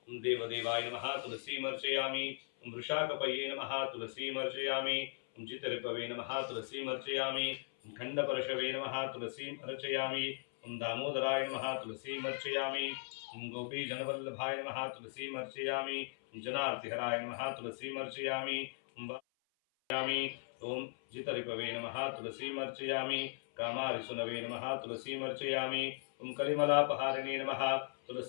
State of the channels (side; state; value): right; silent; 52 dB below the other